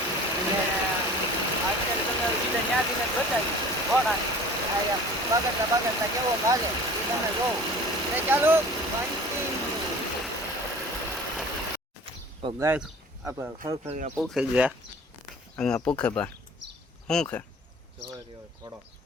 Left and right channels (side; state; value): both; normal; correlation 0.44